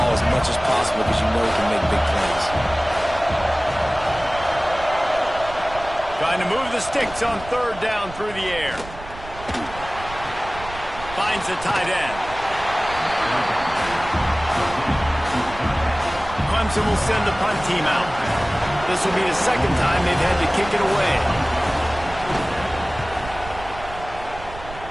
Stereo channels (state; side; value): noise; right; rumble, 14 dB below the sound